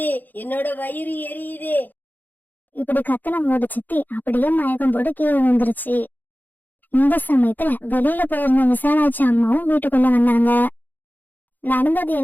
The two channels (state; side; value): late; right; 0.086 ms